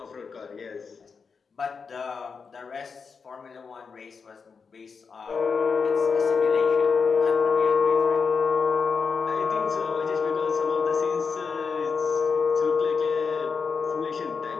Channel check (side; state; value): right; quieter; 5.4 dB